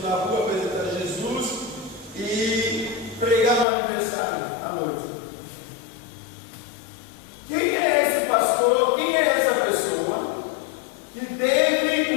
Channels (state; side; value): drops out; right; at 3.7 s